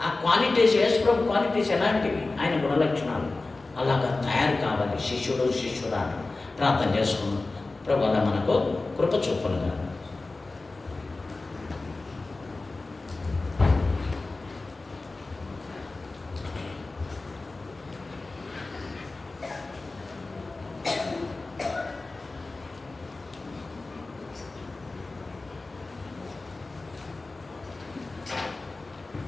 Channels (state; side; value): quieter; right; 3.4 dB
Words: ఆ క్వాలిటీస్, యేసుప్రభు క్వాలిటీస్ ఎలాంటివి? ఆయన గుణలక్షణాలు అలాగా తయారు కావాలి శిష్యుడా. ప్రార్థన చేసుకున్నాం. ప్రభు అలా మనకు కృప చూపనుగా.